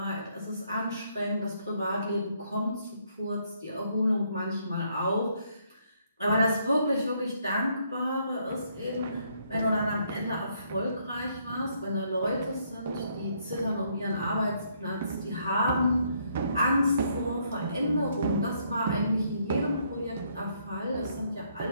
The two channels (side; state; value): both; inverted; correlation -0.71